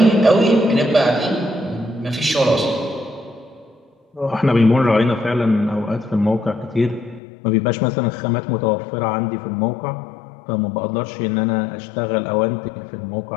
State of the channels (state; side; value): drops out; right; at 7.2 s